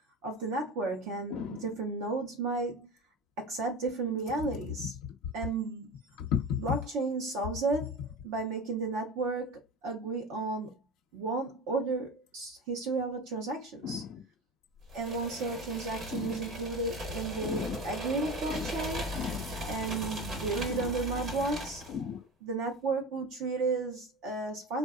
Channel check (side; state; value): both; normal; correlation 0.28